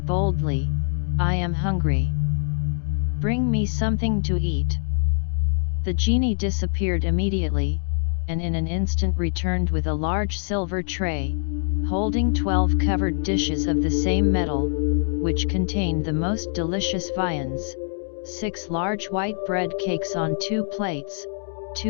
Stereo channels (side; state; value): right; silent; digital silence